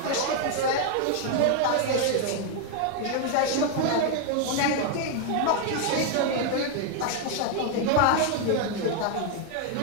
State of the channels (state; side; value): different; both; correlation 0.01